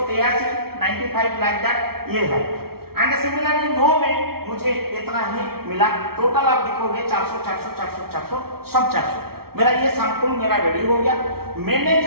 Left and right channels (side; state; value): left; late; 0.94 ms